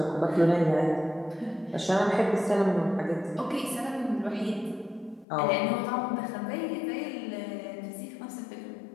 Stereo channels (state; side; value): drops out; right; at 5.2 s